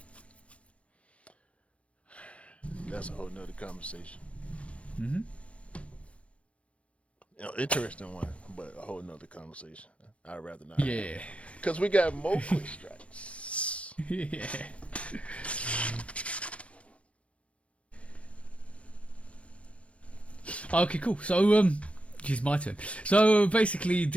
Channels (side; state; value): right; late; 0.062 ms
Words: That's a whole nother conversation. Mm-hmm. Interesting one, but a whole nother conversation. I'd rather not. Yeah. Because we got more strikes. Yeah. Okay, cool. So, it's my turn. So basically,